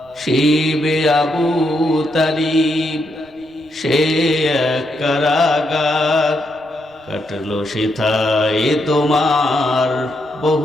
শিবে আবু তালিব সে এক কারাগার, কাটলো সেথায় তোমার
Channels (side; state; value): right; noise; rumble, 30 dB below the sound